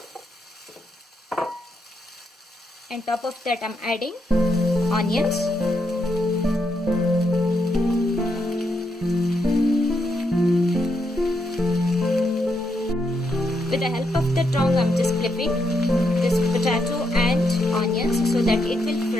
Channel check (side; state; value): both; normal; correlation 0.80